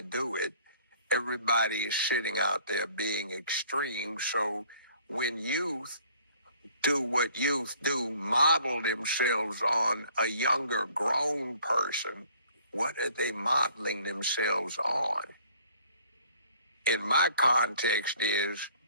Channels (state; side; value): inverted; both; correlation -0.57